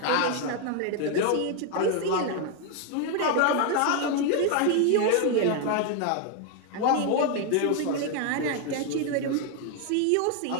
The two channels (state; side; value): different; both; correlation 0.00